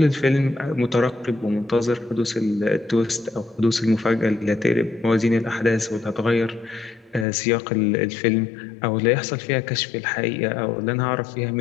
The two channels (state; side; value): drops out; right; at 7.2 s